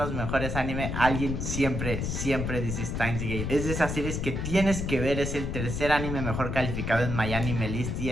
mejores anime, alguien siempre dice Steins Gate. Es de esas series que tienes que ver, es el tercer anime mejor calificado en MyAnimeList y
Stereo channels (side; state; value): left; noise; rumble, 3 dB below the sound